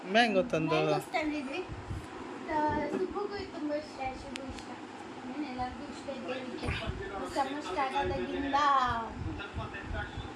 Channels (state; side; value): identical; both; correlation 1.00